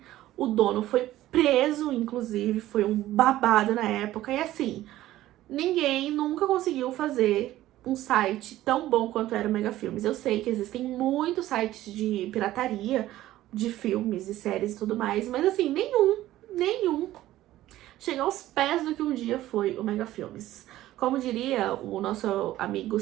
O dono foi preso, inclusive, foi um babado na época, e assim, ninguém nunca conseguiu fazer um site tão bom quanto era o Mega Filmes. Eu sei que existem muitos sites de pirataria de filmes e séries e tudo mais, mas assim, nenhum chega aos pés do que um dia foi o Mega Filmes. Como diria o nosso amigo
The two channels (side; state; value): left; quieter; 14.8 dB